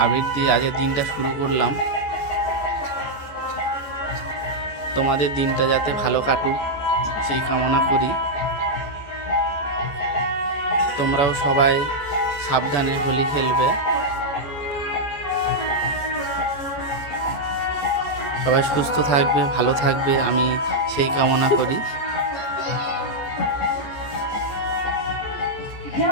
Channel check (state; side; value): late; right; 14 ms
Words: দিয়ে আজকের দিনটা শুরু করলাম। তোমাদের দিনটা যাতে ভালো কাটুক সেই কামনা করি। তোমরাও সবাই সাবধানে হোলি খেলবে। সবাই সুস্থ থাকবে, ভালো থাকবে, আমি সেই কামনা করি।